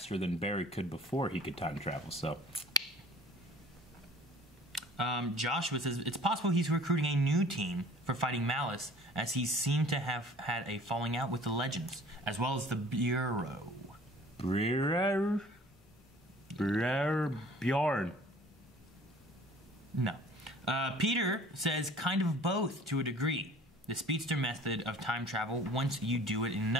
than Barry could before he could time travel, so. Joshua says, it's possible he's recruiting a new team for fighting Malice, as he seemed to have had a falling out with the Legends, as well as the Bureau. Bjorn. No. Peter says, kind of both to a degree. The speedster method of time travel, once you do it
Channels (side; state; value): both; normal; correlation 0.50